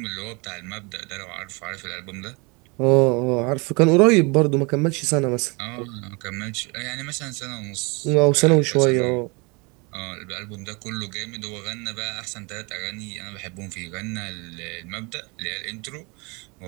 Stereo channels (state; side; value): quieter; left; 28.9 dB